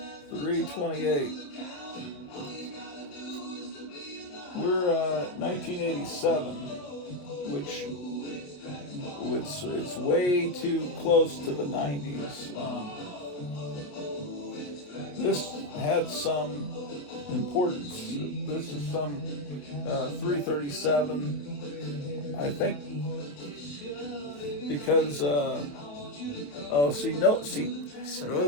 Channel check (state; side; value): late; right; 27 ms